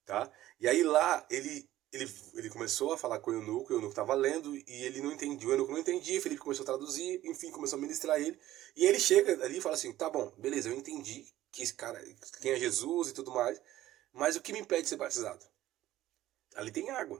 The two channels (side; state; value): left; quieter; 14.5 dB